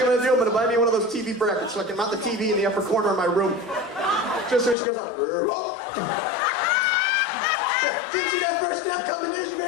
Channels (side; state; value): right; drops out; at 4.8 s